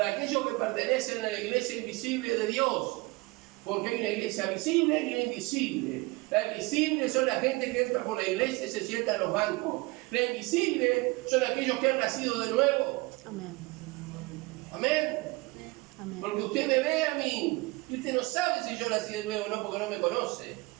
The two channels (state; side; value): quieter; left; 24.0 dB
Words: aquellos que pertenecen a la iglesia invisible de Dios. Porque hay una iglesia visible y una invisible. La invisible son la gente que entra por la iglesia y se sienta en los bancos. La invisible son aquellos que han nacido de nuevo. Amén. Amén. Amén. Porque usted me ve a mí y usted no sabe si yo nací de nuevo o no, porque no me conoce.